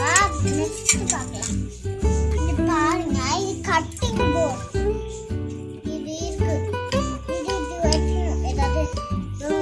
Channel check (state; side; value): identical; both; correlation 1.00